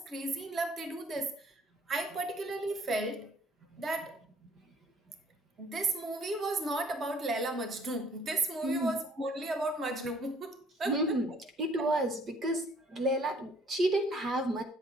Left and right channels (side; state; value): both; normal; correlation 0.60